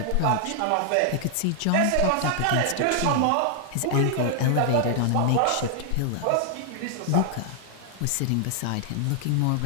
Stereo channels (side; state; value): both; different; correlation 0.00